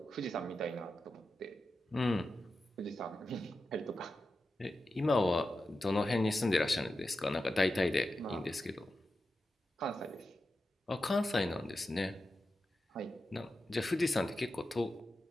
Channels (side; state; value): both; normal; correlation 0.91